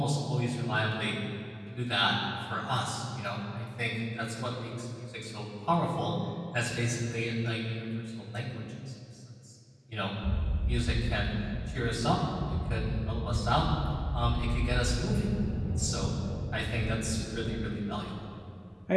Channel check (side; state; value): both; identical; correlation 1.00